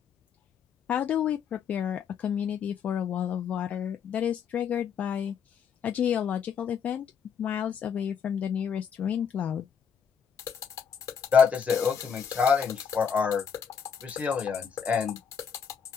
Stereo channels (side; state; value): right; quieter; 7.1 dB